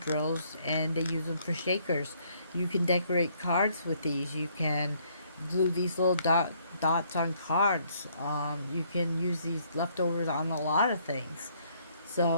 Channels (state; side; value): inverted; both; correlation -0.67